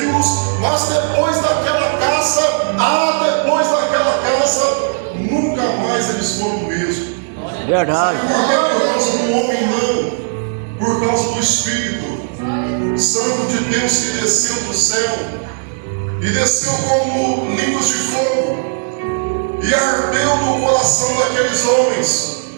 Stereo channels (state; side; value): silent; left; digital silence